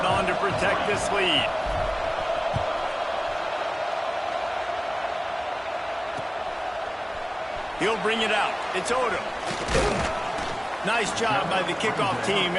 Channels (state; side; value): identical; both; correlation 1.00